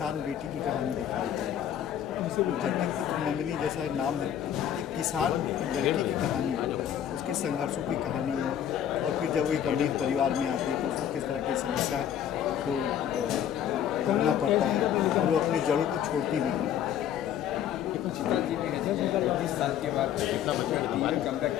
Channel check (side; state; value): right; quieter; 9.9 dB